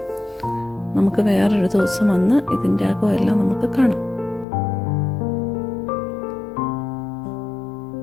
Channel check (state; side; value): drops out; right; at 4.5 s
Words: നമുക്ക് വേറൊരു ദിവസം വന്ന് ഇതിൻ്റെ അകമെല്ലാം നമുക്ക് കാണാം.